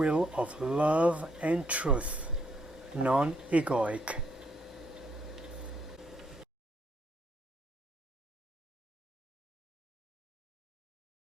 of love and truth, non-egoic.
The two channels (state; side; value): normal; both; correlation 0.73